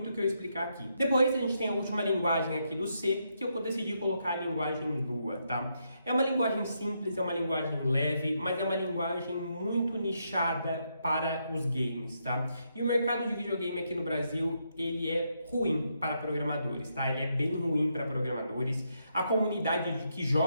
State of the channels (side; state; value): both; inverted; correlation -0.79